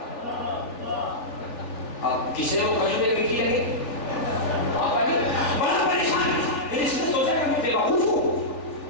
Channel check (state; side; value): late; right; 3.4 ms